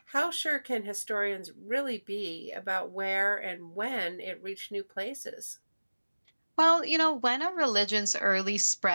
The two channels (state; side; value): inverted; both; correlation -1.00